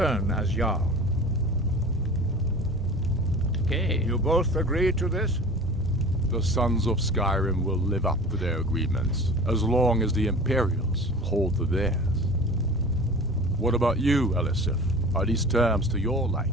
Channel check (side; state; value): both; normal; correlation 0.38